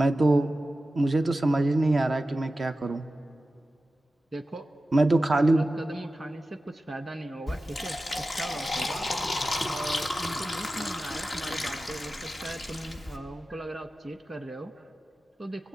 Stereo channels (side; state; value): both; normal; correlation 0.94